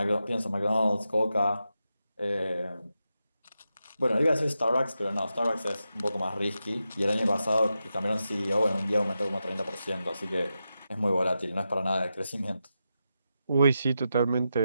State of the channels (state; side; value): inverted; both; correlation -0.88